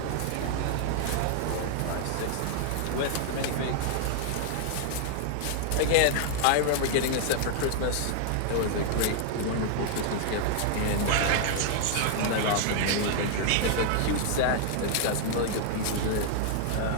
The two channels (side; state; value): both; different; correlation 0.00